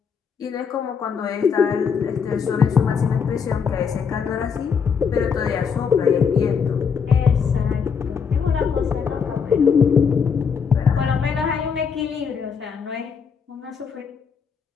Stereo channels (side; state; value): right; quieter; 6.3 dB